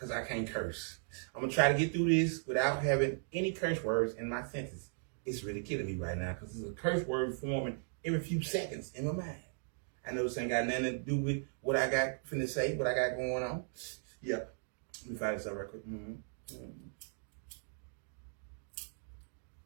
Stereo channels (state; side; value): silent; left; digital silence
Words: I can't curse. I'm going to try to get through this without having any curse words in my sentence. It's really killing me right now because there's a curse word forming every few seconds in my mind. I know this ain't got nothing to do with what I got finna say, what I got going on. Yeah. Let me fire this up real quick.